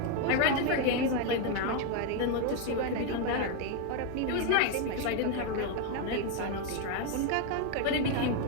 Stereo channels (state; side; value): different; both; correlation 0.01